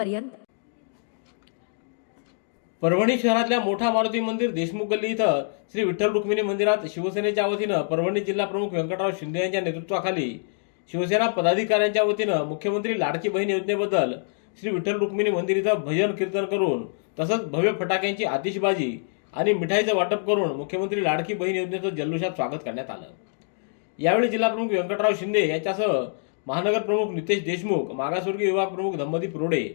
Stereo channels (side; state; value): right; silent; digital silence